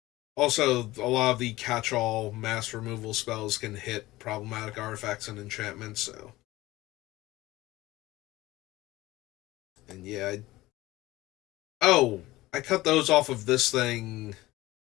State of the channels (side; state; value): right; quieter; 18.2 dB